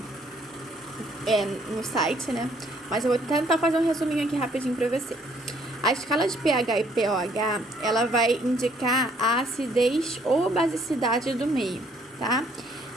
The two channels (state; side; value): normal; both; correlation 0.64